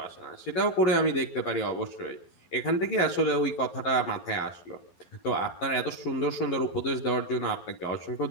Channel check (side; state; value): right; late; 11 ms